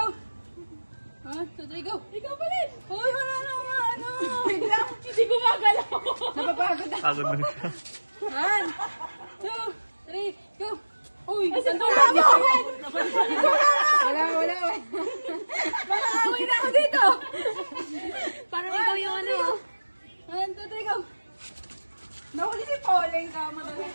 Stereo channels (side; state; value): both; inverted; correlation -1.00